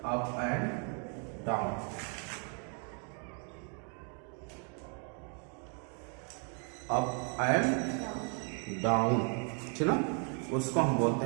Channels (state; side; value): quieter; left; 40.0 dB